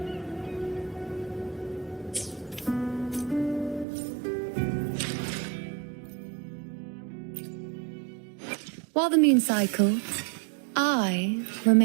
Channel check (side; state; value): left; drops out; at 3.9 s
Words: While the moon cycles, I